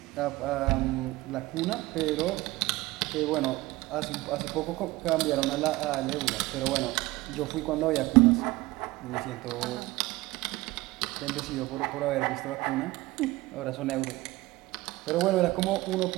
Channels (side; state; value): left; quieter; 19.7 dB